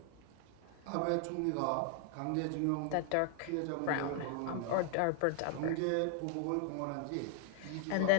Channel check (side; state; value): both; different; correlation 0.00